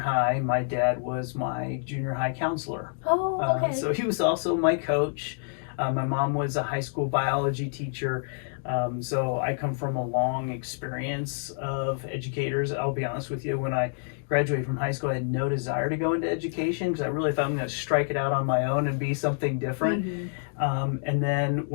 my dad was my junior high counselor. Oh, okay. So he was also my coach. My mom was a high school biology teacher. So I come from a long experience of educators. I'll be honest with you, when I graduated from high school, I had no desire to go into education because I really thought I'm going to strike it out on my own and be something different. And then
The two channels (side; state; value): right; silent; digital silence